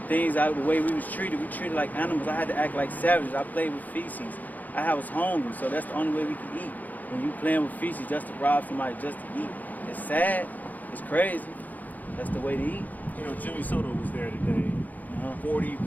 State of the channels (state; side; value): late; right; 0.081 ms